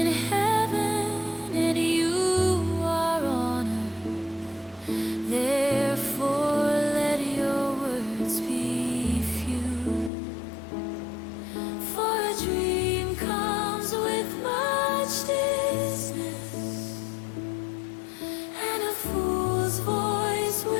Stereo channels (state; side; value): drops out; right; at 10.1 s